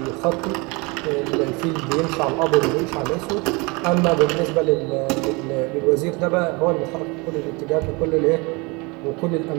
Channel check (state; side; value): quieter; left; 27.5 dB